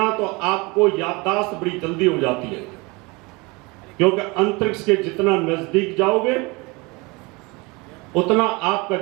तो आपको याददाश्त बड़ी जल्दी हो जाती है, क्योंकि अंतरिक्ष के जितना नजदीक जाओगे उतना आपका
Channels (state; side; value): quieter; left; 25.8 dB